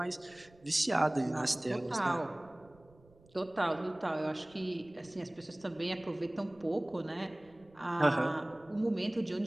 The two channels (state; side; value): noise; right; rumble, 27 dB below the sound